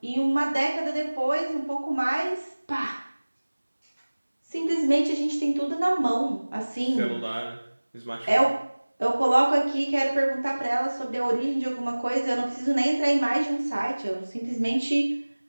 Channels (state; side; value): inverted; both; correlation -1.00